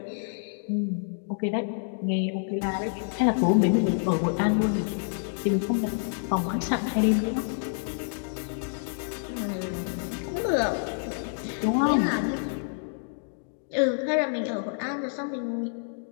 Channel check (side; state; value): right; silent; digital silence